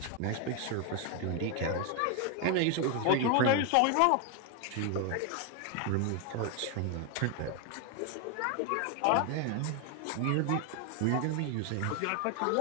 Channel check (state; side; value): different; both; correlation 0.01